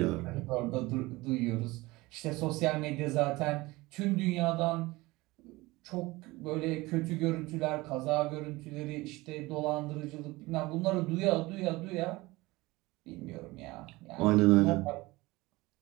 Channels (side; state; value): left; quieter; 21.1 dB